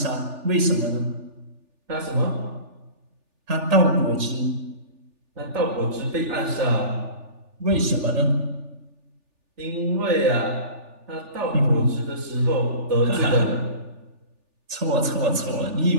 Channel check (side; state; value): left; late; 3.4 ms